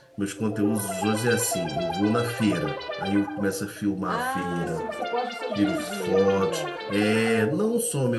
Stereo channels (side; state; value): both; identical; correlation 1.00